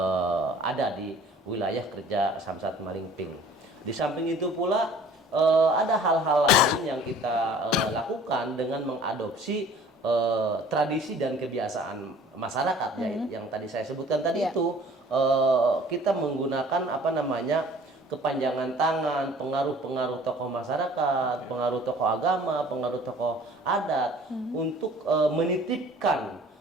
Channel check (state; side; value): normal; both; correlation 0.50